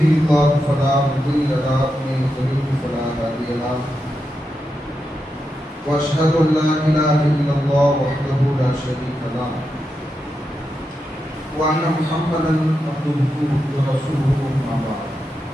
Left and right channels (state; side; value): normal; both; correlation 0.87